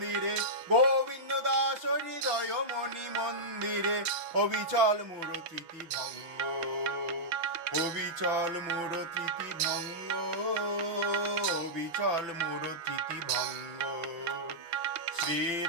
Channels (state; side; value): late; left; 5.9 ms